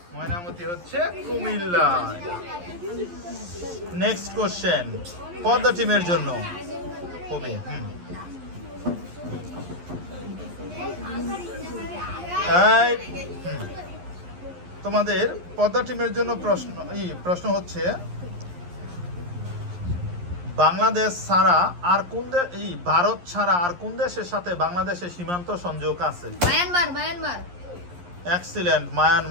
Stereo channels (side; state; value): left; late; 11 ms